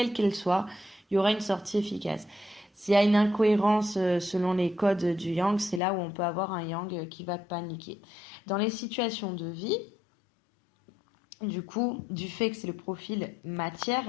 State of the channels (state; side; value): drops out; right; at 5.8 s